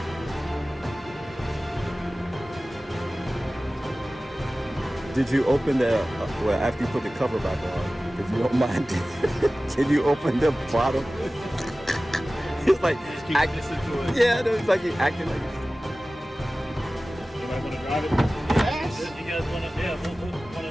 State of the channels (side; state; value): both; normal; correlation 0.97